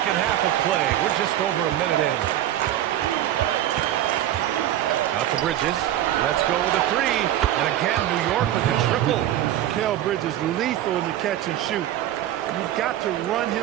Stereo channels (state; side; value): quieter; left; 12.5 dB